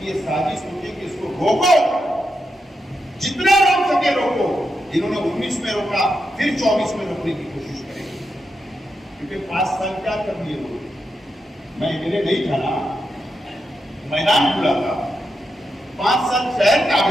ये साजिश होती है कि इसको रोको, जितना रोक सके रोको। इन्होंने 19 में रोका, फिर 24 में रोकने की कोशिश करेंगे, क्योंकि 5 साल क्या कर दिए लोग। मैं एमएलए नहीं था ना, मैदान खुला था, 5 साल शहर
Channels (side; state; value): both; normal; correlation 0.85